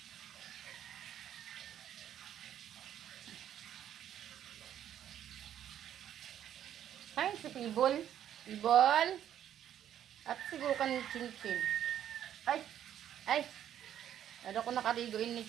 Ay, si Pibol. Pibol. At siguro kan Chinchin. Ay. Ay. Ano ko nakaligoin ni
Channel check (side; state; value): left; quieter; 10.5 dB